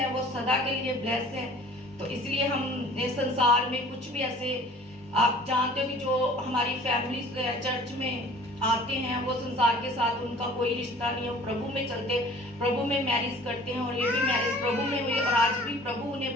वो सदा के लिए ब्लेस है। तो इसलिए हम संसार में कुछ भी ऐसे, आप जानते हो कि जो हमारी फैमिली चर्च में आते हैं वो संसार के साथ उनका कोई रिश्ता नहीं है, वो प्रभु में चलते, प्रभु में मैरिज करते हैं, और ये भी मैरिज प्रभु में हुई और आज भी प्रभु उन्हें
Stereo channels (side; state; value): both; normal; correlation 0.49